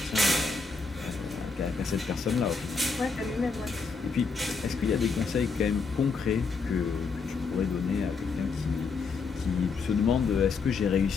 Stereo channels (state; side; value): quieter; right; 4.8 dB